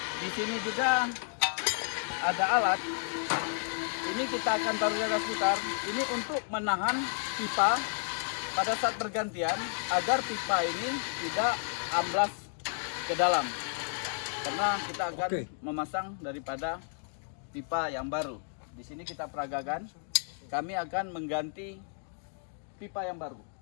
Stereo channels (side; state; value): right; silent; 56 dB below the other